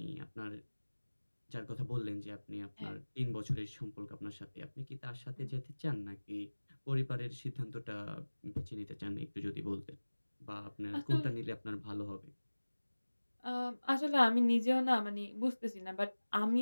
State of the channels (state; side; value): inverted; both; correlation -1.00